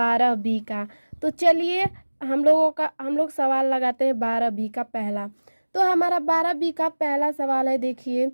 का। तो चलिए हम लोग सवाल लगाते हैं 12B का पहला। तो हमारा 12B का पहला सवाल है, देखिए,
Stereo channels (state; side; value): inverted; both; correlation -1.00